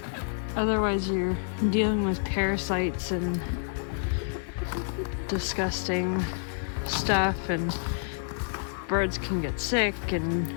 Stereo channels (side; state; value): right; silent; 59 dB below the other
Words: Otherwise, you're dealing with parasites and disgusting stuff, and birds can get sick, and